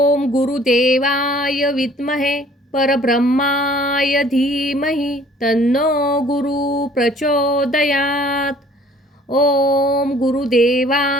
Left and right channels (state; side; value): normal; both; correlation 0.55